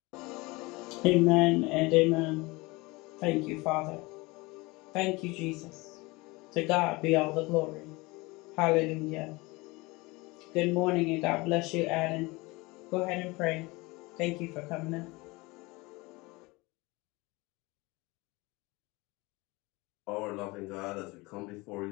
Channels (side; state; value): right; quieter; 23.8 dB